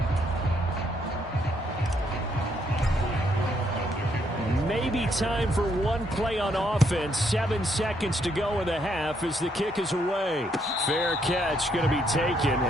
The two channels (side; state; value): both; normal; correlation 0.73